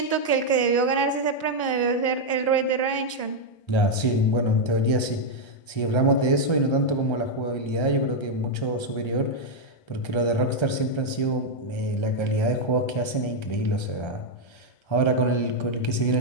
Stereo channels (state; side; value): late; right; 1.3 ms